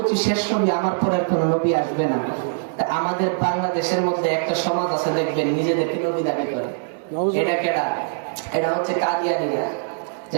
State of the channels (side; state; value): left; silent; digital silence